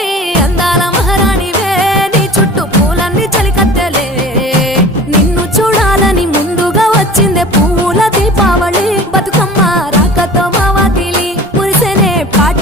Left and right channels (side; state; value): both; normal; correlation 0.41